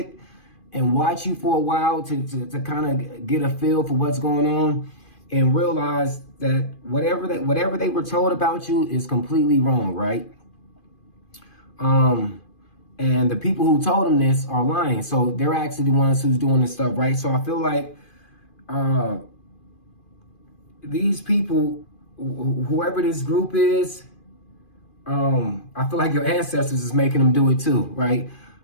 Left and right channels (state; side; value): late; right; 2.5 ms